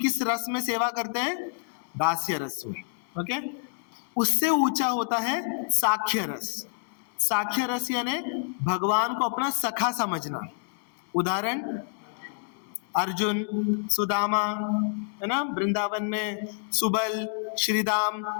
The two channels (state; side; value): silent; right; 59 dB below the other